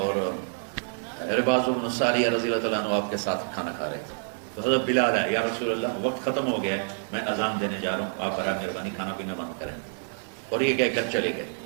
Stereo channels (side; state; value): left; silent; 60 dB below the other